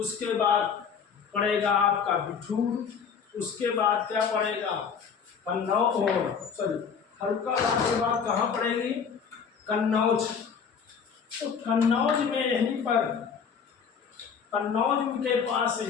बाद पड़ेगा आपका बिठूर। उसके बाद क्या पड़ेगा? फर्रुखाबाद के बाद कहाँ पड़ेगी? कन्नौज। तो कन्नौज में यहीं पर कन्नौज के पास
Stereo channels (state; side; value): quieter; right; 6.5 dB